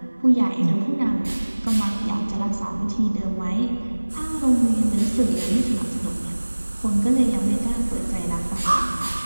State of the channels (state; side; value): inverted; both; correlation -1.00